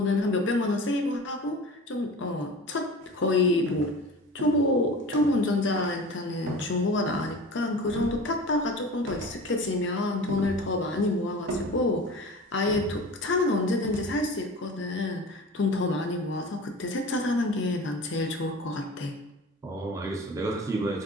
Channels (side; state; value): both; normal; correlation 0.37